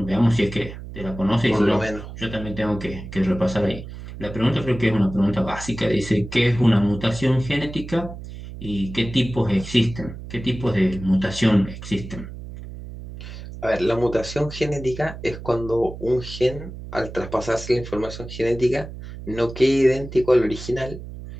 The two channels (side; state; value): right; noise; hum, 12 dB below the sound